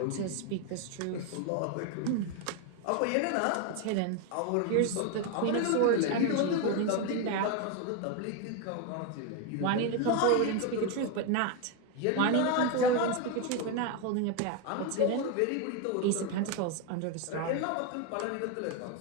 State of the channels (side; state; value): both; different; correlation 0.02